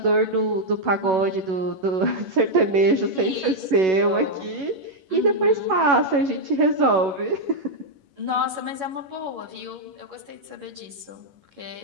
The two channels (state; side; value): late; left; 11 ms